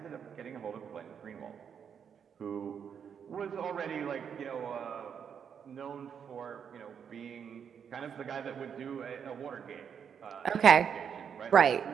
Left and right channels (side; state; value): left; quieter; 7.6 dB